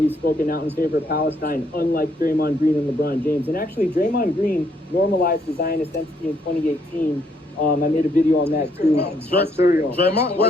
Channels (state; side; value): normal; both; correlation 0.71